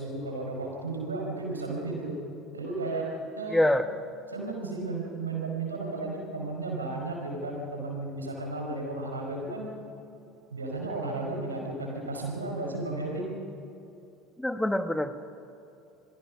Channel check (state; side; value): normal; both; correlation 0.37